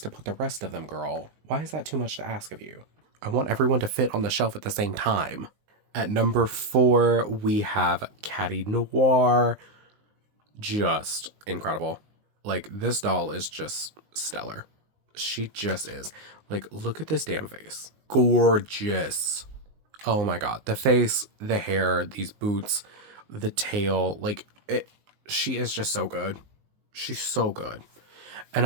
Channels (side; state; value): left; late; 19 ms